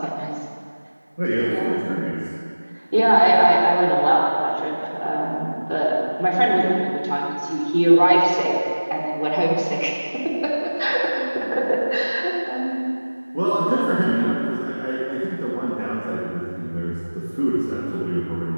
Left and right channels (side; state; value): both; inverted; correlation -1.00